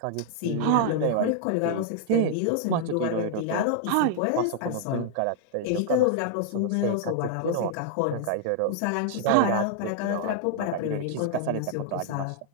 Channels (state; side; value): different; both; correlation -0.01